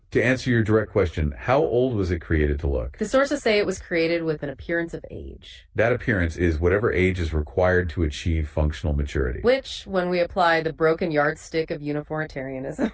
to answer your direct question, how old was it created to look? The sources say it was created with an appearance of age, That appearance is whatever age is required to achieve functional maturity. which, when we apply the broken yardstick of uniformitarianism,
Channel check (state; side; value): identical; both; correlation 1.00